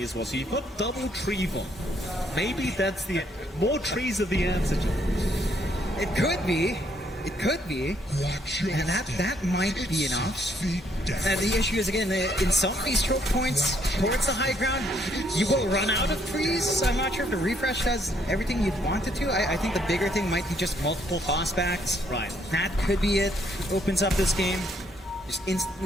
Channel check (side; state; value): both; normal; correlation 0.70